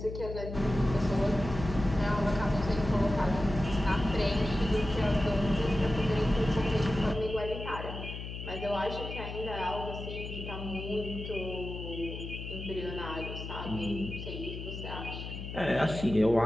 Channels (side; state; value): left; noise; hum, 8 dB below the sound